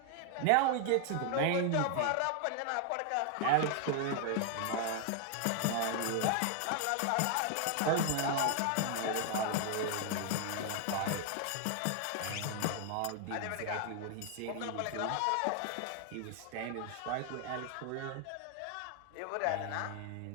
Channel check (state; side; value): different; both; correlation 0.00